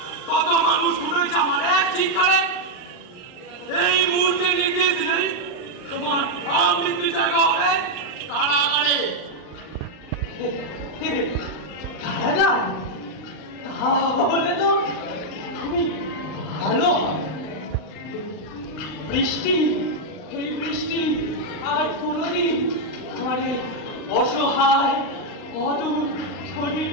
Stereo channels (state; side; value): late; right; 39 ms